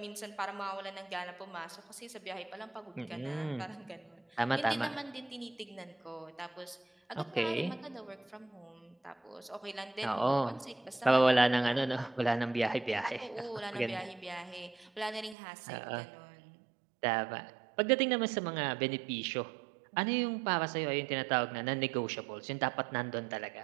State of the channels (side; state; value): left; drops out; at 15.4 s